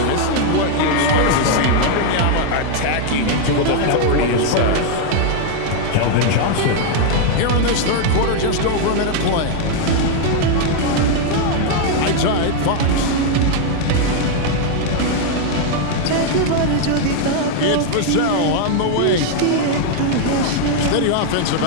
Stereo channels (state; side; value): different; both; correlation 0.00